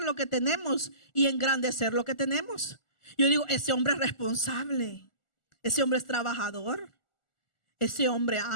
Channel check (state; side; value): late; right; 1.4 ms